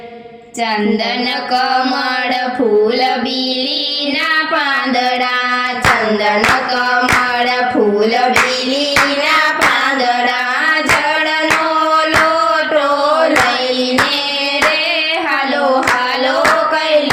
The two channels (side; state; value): both; identical; correlation 1.00